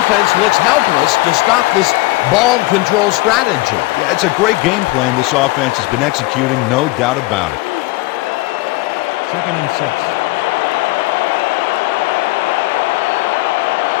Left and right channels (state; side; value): quieter; right; 21.2 dB